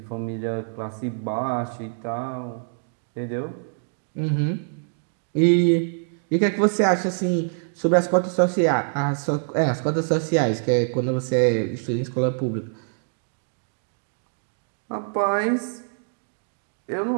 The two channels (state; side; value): silent; left; digital silence